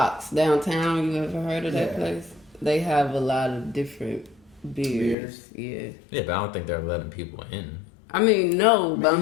downtown. You ever heard of that place? They have a lot of different beers. Yeah. Yeah, but I don't think they're letting people in. I mean, no, but I'm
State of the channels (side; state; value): right; drops out; at 5.2 s